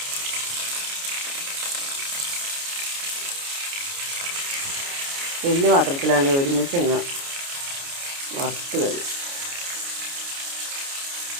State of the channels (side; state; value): left; late; 29 ms